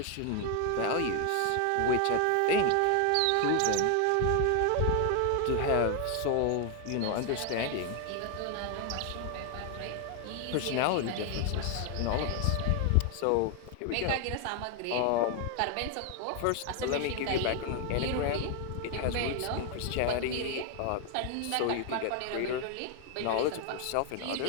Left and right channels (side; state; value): both; different; correlation 0.01